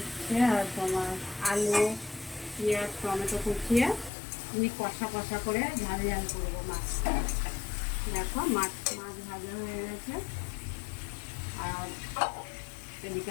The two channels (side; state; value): right; drops out; at 4.1 s